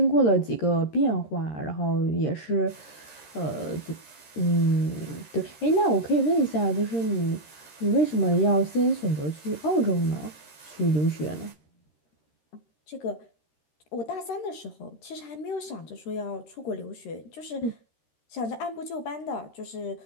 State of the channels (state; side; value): late; right; 13 ms